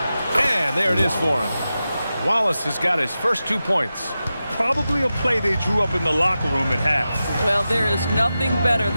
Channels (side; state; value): both; inverted; correlation -0.92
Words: And there it is for him. Wallace has got his first 2 points. Probably a play they drew up in the locker room at half. Well, there is nothing better